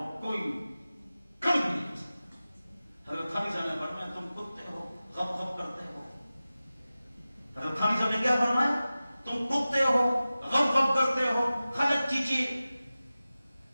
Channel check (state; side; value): inverted; both; correlation -0.96